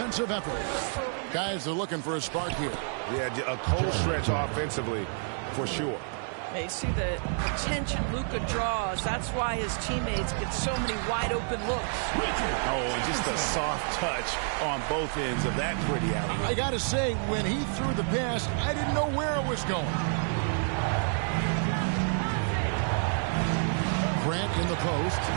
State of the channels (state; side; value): silent; left; 59 dB below the other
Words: effort. Guys are looking for a spark here. Yeah, a cold stretch offensively for sure. They see the attention Luka draws. That's why his teammates get so many wide open looks. Oh, and just a soft touch on both ends of that pretty alley. I got to say, when he threw the pass, I didn't know where it was going. Grant in the post,